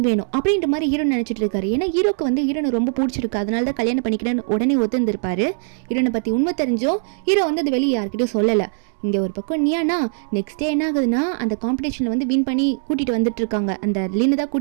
வேணும் அப்படின்ற மாதிரி ஹீரோ நினச்சிட்டு இருக்காரு. ஏன்னா ஹீரோக்கு வந்து ஹீரோனை ரொம்ப பிடிச்சிருக்கு, அதனால தான் கல்யாணம் பண்ணிக்கிறேன்னு உடனே ஒத்துந்திருப்பாரு. ஹீரோனை பற்றி உண்மை தெரிஞ்சும் ஹீரோ வந்து அது வெளியே யார்கிட்டையும் சொல்லலை. இங்கே ஒரு பக்கம் நியானா நெக்ஸ்ட் டே என்ன ஆகுதுன்னா அந்த காம்படிஷனில் வந்து வின் பண்ணி கூட்டிகிட்டு வந்துட்டு இருக்காங்க. அந்த லின்னு தான்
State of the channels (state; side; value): silent; left; 65 dB below the other